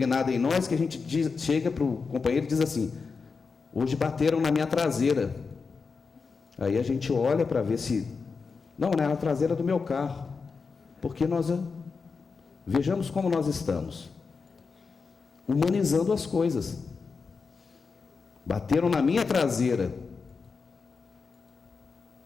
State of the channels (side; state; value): right; quieter; 4.9 dB